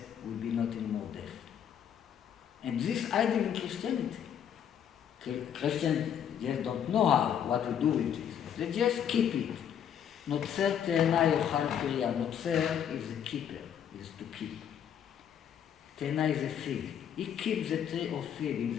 will be not anymore death. And this idea in Christianity. Christians just don't know what to do with this. They just keep it. Notzer te'ena yochal piriya. Notzer is a keeper, is to keep. Te'ena is a fig. He keeps the tree of fig. In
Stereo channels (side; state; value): right; quieter; 9.0 dB